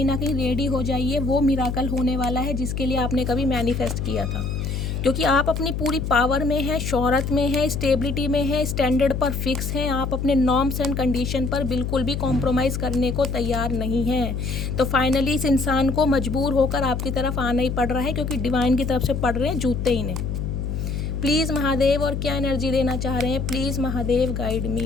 ना कहीं रेडी हो जाइए, वो मिराकल होने वाला है जिसके लिए आपने कभी मैनिफेस्ट किया था, क्योंकि आप अपनी पूरी पावर में हैं, शोहरत में हैं, स्टेबिलिटी में हैं, स्टैंडर्ड पर फिक्स हैं, आप अपने नॉर्म्स एंड कंडीशन पर बिल्कुल भी कॉम्प्रोमाइज़ करने को तैयार नहीं हैं। तो फाइनली इस इंसान को मजबूर होकर आपकी तरफ आना ही पड़ रहा है, क्योंकि डिवाइन की तरफ से पड़ रहे हैं जूते इन्हें। प्लीज़ महादेव, और क्या एनर्जी देना चाह रहे हैं, please Mahadev guide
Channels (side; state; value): left; noise; hum, 3 dB below the sound